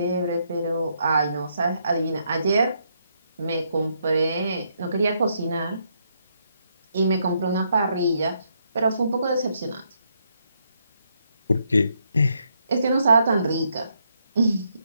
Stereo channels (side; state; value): both; inverted; correlation -0.76